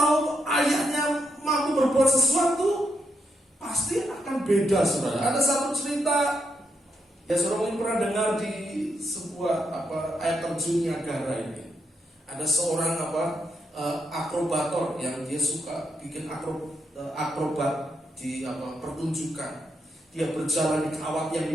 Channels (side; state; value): both; normal; correlation 0.80